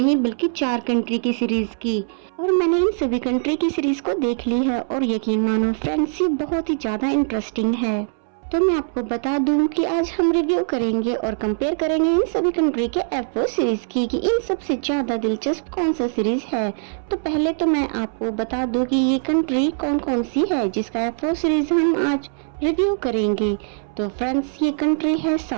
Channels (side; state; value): left; silent; 64 dB below the other